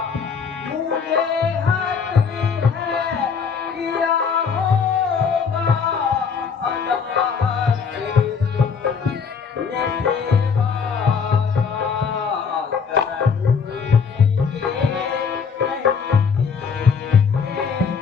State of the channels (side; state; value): right; quieter; 6.0 dB